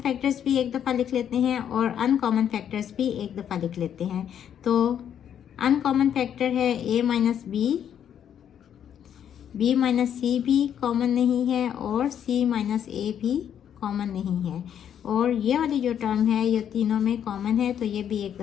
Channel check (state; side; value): quieter; right; 9.2 dB